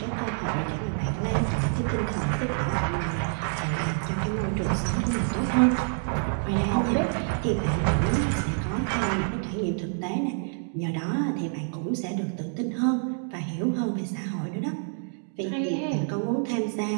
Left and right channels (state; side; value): silent; left; 60 dB below the other